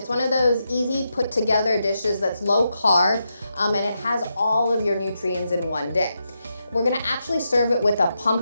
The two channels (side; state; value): both; inverted; correlation -0.85